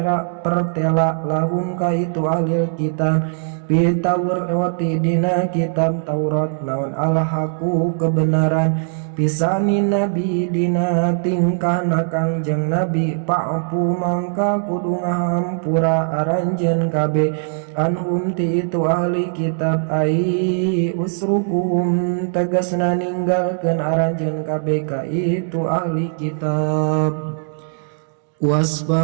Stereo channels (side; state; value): left; silent; digital silence